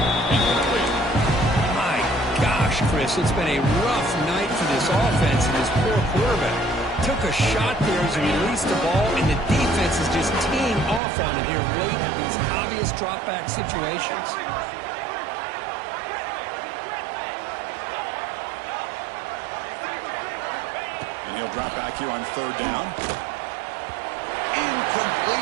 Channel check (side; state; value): left; drops out; at 11.0 s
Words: Incomplete. My gosh, Chris, it's been a rough night for this offense and his poor quarterback. Took a shot there as he released the ball, and the defense is just teeing off on him here late in these obvious drop-back situations. And he'll drop back here on 3rd down.